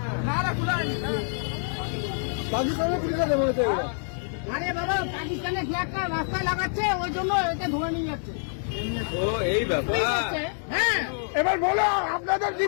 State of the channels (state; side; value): silent; right; 61 dB below the other